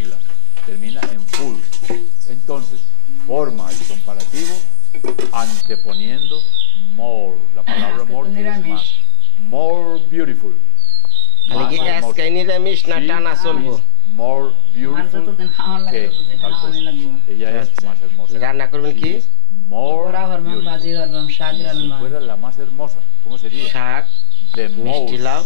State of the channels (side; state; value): both; different; correlation 0.00